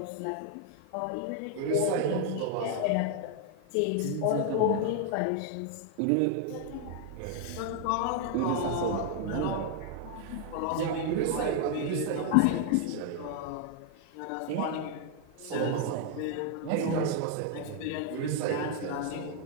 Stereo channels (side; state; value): both; different; correlation 0.00